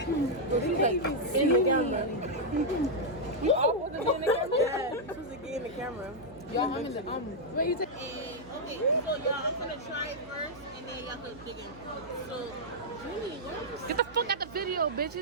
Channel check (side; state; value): right; noise; hum, 19 dB below the sound